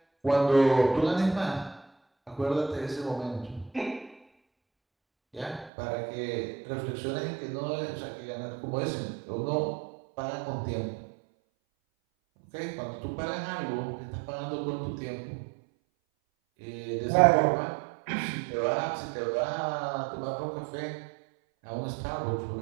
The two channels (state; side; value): drops out; left; at 5.7 s